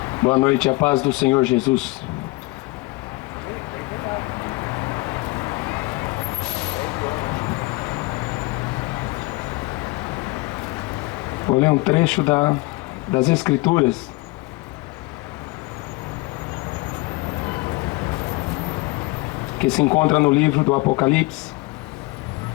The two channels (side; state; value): right; quieter; 23.6 dB